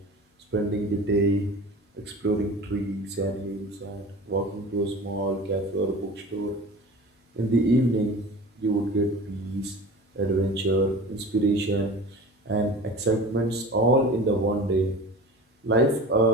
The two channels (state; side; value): normal; both; correlation 0.37